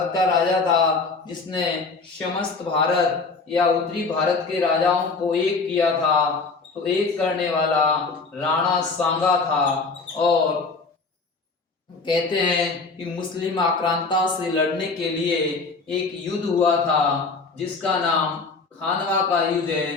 का राजा था जिसने समस्त भारत या उत्तरी भारत के राजाओं को एक किया था? तो एक करने वाला राणा सांगा था। और कहते हैं कि मुस्लिम आक्रांता से लड़ने के लिए एक युद्ध हुआ था जिसका नाम खानवा का युद्ध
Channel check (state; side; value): quieter; right; 4.2 dB